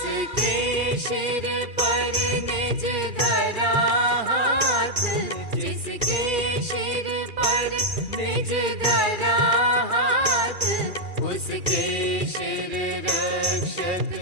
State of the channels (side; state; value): left; late; 2.4 ms